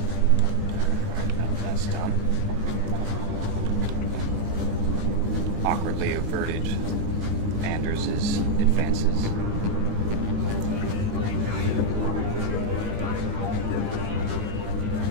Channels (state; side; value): late; left; 19 ms